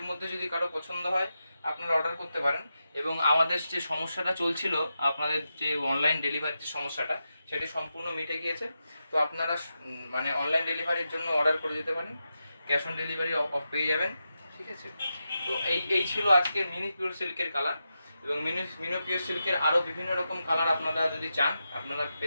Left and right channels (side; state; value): both; inverted; correlation -0.89